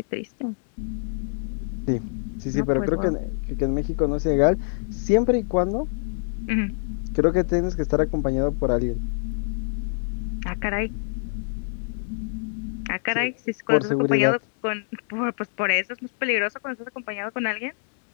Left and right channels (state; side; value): silent; right; digital silence